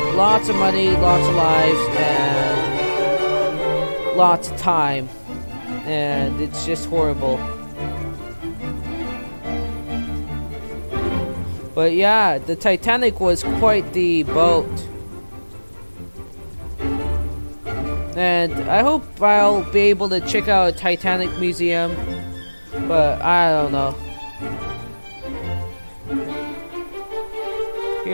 lots of money, lots of lives, and lots of time. And it's just horrible. But yeah, the Titanic was quite the boat. And I hope I'll be able to check out a Titanic museum. But I don't know.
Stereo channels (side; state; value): both; inverted; correlation -1.00